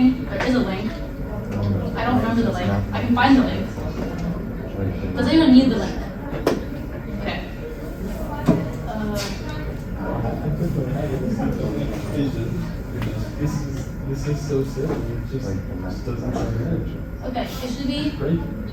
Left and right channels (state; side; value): identical; both; correlation 1.00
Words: there is a link. I don't remember the link. I can find the link. Does anyone need the link? Okay. This is so silly. It just doesn't change. Okay, it should be.